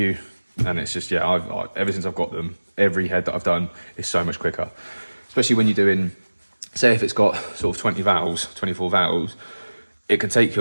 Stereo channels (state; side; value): inverted; both; correlation -1.00